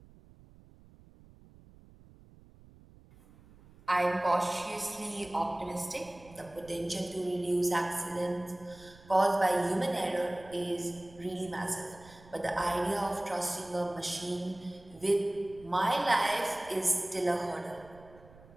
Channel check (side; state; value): right; noise; rumble, 23 dB below the sound